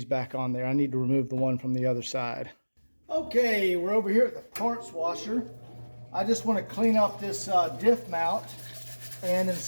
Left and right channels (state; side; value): inverted; both; correlation -1.00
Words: back on there. I need to remove the one from the other side. Okay, we're over here at the parts washer. I just want to clean up this diff mount and